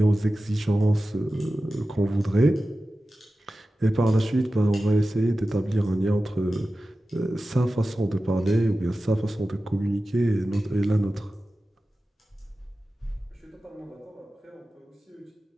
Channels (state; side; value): normal; both; correlation 0.94